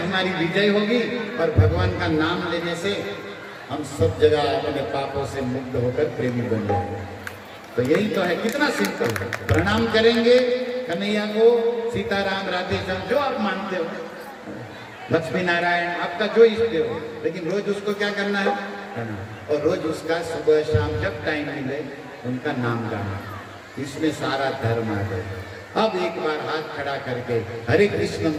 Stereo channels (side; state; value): both; identical; correlation 1.00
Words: विजय होगी, और भगवान का नाम लेने से हम सब जगह अपने पापों से मुक्त होकर प्रेमी बन जाएंगे। तो यही तो है, कितना सिंपल है। प्रणाम करेंगे कन्हैया को, सीताराम, राधे श्याम, जो आप मानते हो, लक्ष्मी नारायण, आपका जो इष्ट हो, लेकिन रोज उसको क्या करना है? और रोज उसका सुबह शाम जब टाइम मिले उनका नाम गाना, इसमें सारा धर्म आ गया। अब एक बार हाथ खड़ा करके हरे कृष्ण